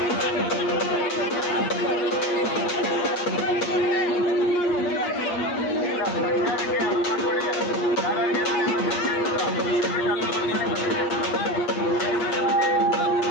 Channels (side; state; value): right; late; 8.5 ms